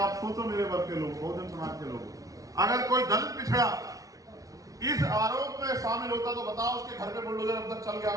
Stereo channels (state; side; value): late; left; 0.17 ms